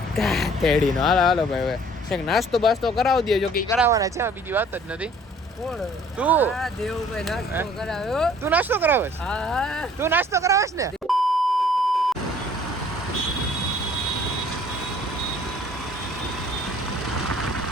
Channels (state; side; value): normal; both; correlation 0.55